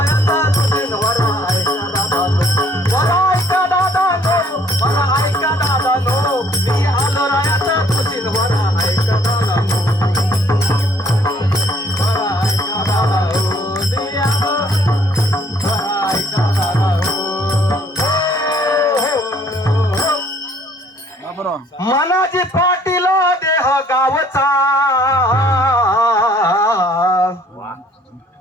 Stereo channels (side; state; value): both; normal; correlation 0.61